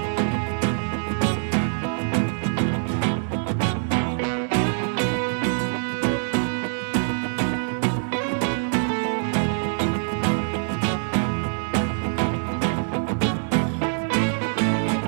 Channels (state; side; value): silent; left; digital silence